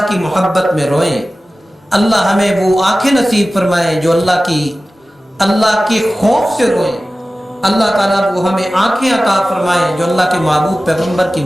کی محبت میں روئیں، اللہ ہمیں وہ آنکھیں نصیب فرمائے جو اللہ کے خوف سے روئیں، اللہ تعالیٰ وہ ہمیں آنکھیں عطا فرمائے جو اللہ کے محبوب پیغمبر کی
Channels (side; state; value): both; normal; correlation 0.96